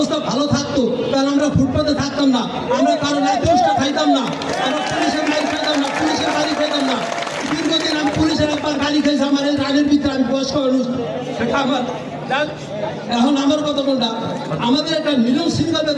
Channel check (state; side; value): identical; both; correlation 1.00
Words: ভালো থাকতো তাহলে আমরা ফুটপাতে থাকতাম না, আমরা কারো লাইসেন্সটা খাইতাম না, আমরা পুলিশের মাইক খাইতাম না, পুলিশের গাড়ি খাইতাম না। দীর্ঘদিন আমি পুলিশের একবার গাড়ি খাইছি, আমার এই রানের ভিতরে, আমি বয়স্ক মানুষ, সেটা আমার। এখন আমার কথা কোনটা, আমাদের একটা নিয়ম শৃঙ্খলা